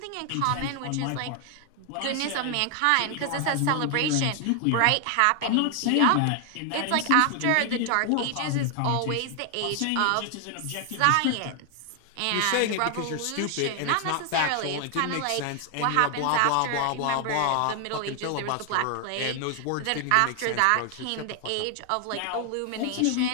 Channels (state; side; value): different; both; correlation 0.00